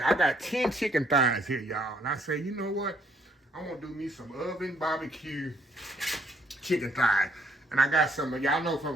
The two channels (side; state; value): both; normal; correlation 0.67